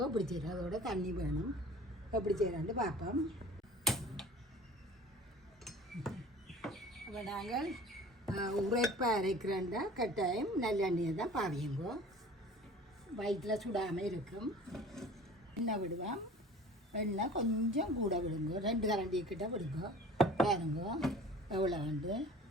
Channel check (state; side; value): normal; both; correlation 0.45